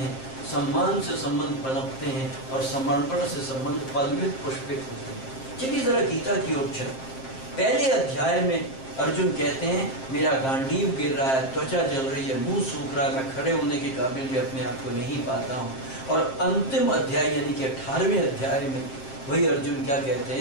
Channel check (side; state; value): right; late; 7.5 ms